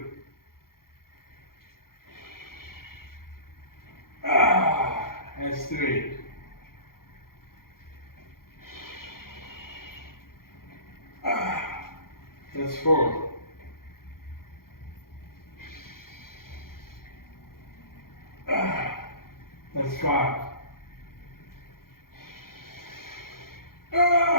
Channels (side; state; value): right; late; 0.92 ms